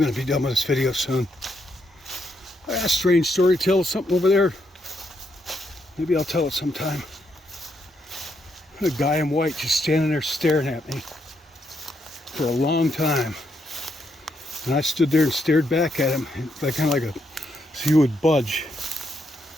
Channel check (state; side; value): normal; both; correlation 0.78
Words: to be done with this video soon. I got a strange story to tell, something over there. Maybe I'll tell it sometime. A guy in white just standing there staring at me for a long time. And I stood there and stared back at him, like kind of like so he would budge.